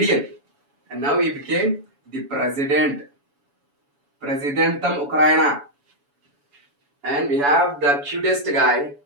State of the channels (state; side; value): late; left; 7.1 ms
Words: and now he became the president. Presidentum Ukraina. And we have the cutest guy.